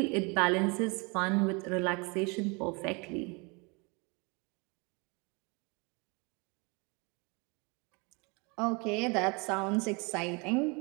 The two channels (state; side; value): quieter; left; 29.9 dB